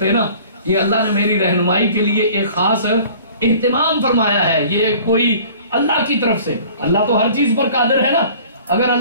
نا, یہ اللہ نے میری رہنمائی کے لیے ایک خاص اہتمام فرمایا ہے, یہ کوئی اللہ کی طرف سے. اللہ تو ہر چیز پر قادر ہے نا, اگر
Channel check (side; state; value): both; inverted; correlation -0.48